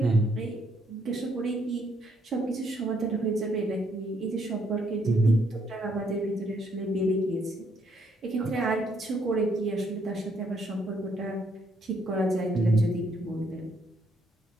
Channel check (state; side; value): normal; both; correlation 0.71